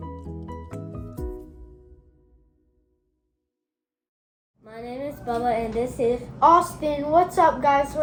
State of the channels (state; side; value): identical; both; correlation 1.00